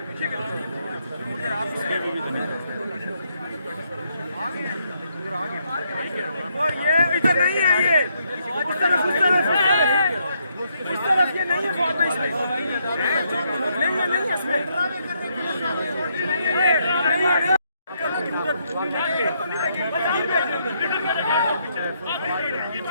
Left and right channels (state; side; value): inverted; both; correlation -0.75